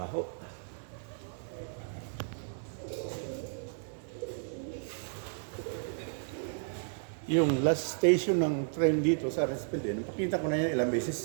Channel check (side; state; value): left; silent; digital silence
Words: Yung last station ng train dito sa Arensfeld, napakita ko na yan ilang beses